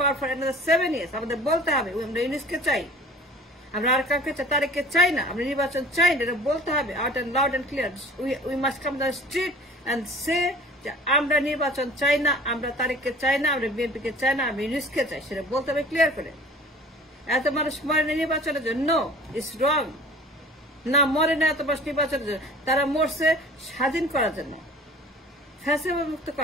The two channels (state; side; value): normal; both; correlation 0.45